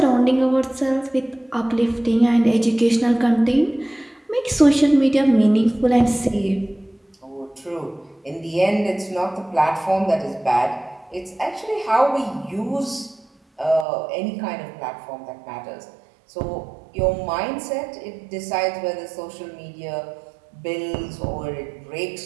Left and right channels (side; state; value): left; drops out; at 13.9 s